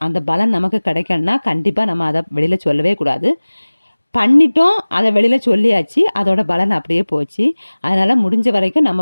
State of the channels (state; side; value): inverted; both; correlation -1.00